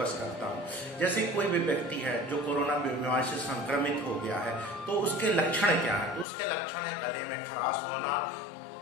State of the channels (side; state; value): right; drops out; at 6.2 s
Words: करता हूँ। जैसे कोई भी व्यक्ति है जो कोरोना बीमारी से संक्रमित हो गया है तो उसके लक्षण क्या है? तो उसके लक्षण है गले में खराश होना,